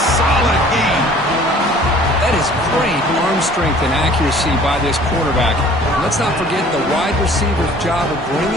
solid gain. That is great arm strength and accuracy by this quarterback. And let's not forget the wide receiver's job of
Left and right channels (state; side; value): normal; both; correlation 0.51